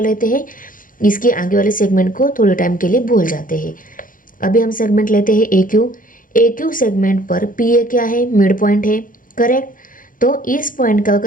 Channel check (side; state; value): right; late; 0.40 ms